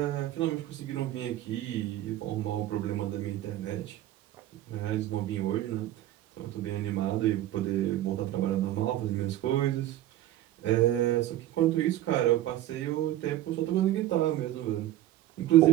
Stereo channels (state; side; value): quieter; left; 14.0 dB